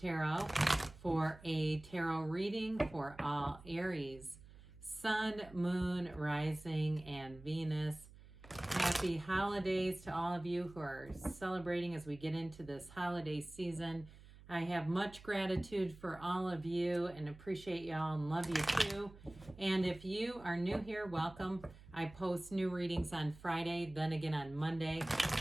for a tarot reading for all Aries, Sun, Moon, Rising, and Venus. Happy holidays to all of you who are celebrating as we get into this holiday season. I have much gratitude for all of you and appreciate y'all and love you too. And if you are new here, welcome. I post new readings on Friday, then again on Monday.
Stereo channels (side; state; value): right; noise; hum, 20 dB below the sound